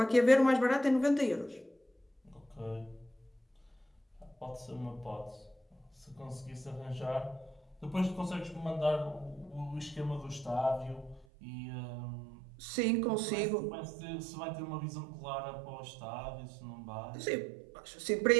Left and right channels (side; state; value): left; drops out; at 11.2 s